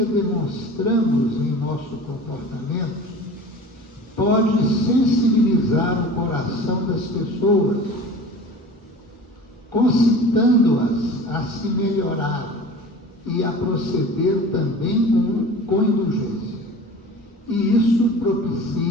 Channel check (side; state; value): both; normal; correlation 0.39